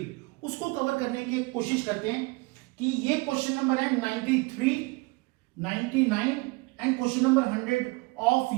उसको कवर करने की कोशिश करते हैं कि ये क्वेश्चन नंबर है 93, 99 and question number 100 of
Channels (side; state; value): left; quieter; 25.5 dB